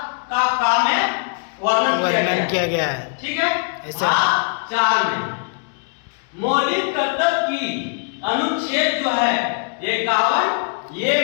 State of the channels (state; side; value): quieter; right; 39.5 dB